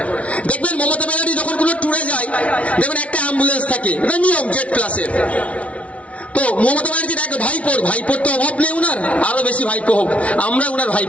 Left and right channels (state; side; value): late; right; 0.064 ms